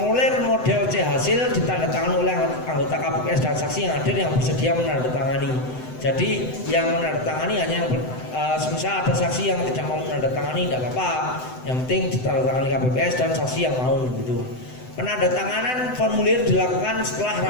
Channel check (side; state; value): right; late; 7.9 ms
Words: model C hasil ditandatangani oleh anggota KPPS dan saksi yang hadir yang bersedia menandatangani. Jadi yang menandatangani hanya yang semisal ada saksi yang tidak mau menandatangani tidak apa-apa. Yang penting ditandatangani KPPS dan saksi yang mau gitu. Penandatanganan formulir dilakukan setelah